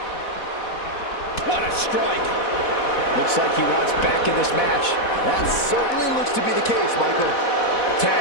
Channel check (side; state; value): right; late; 4.1 ms